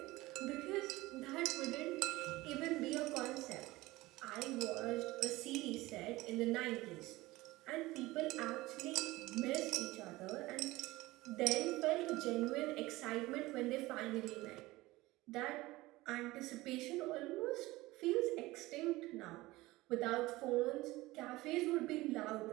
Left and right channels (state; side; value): quieter; left; 19.4 dB